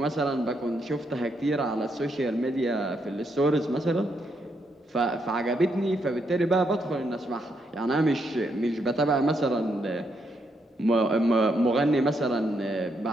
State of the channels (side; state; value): both; normal; correlation 0.78